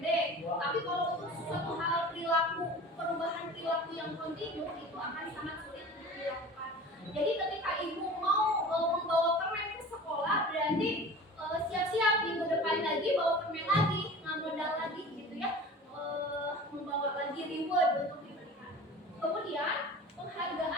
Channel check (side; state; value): both; normal; correlation 0.39